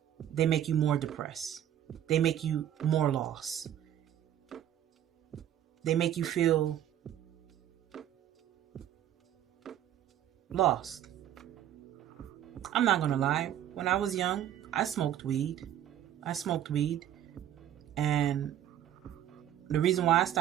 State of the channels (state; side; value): quieter; left; 11.2 dB